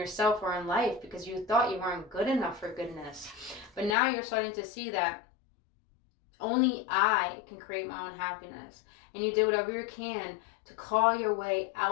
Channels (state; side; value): drops out; right; at 4.0 s